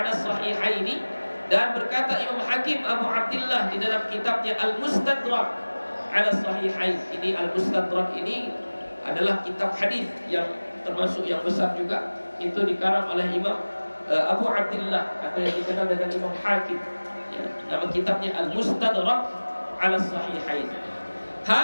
as-sahihaini, dan berkata Imam Hakim Abu Abdullah di dalam kitabnya Al-Mustadrak 'ala as-sahihain. Ini Al-Mustadrak ini adalah kitab hadis yang termasuk yang besar juga. Itu dikarang oleh Imam Abu Abdullah, atau yang dikenal dengan Imam Hakim ya. Nama kitabnya Al-Mustadrak 'ala as-sahihain.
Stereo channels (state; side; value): inverted; both; correlation -1.00